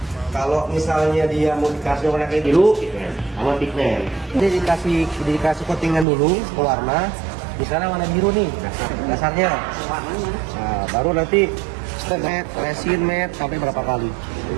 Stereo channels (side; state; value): left; drops out; at 6.1 s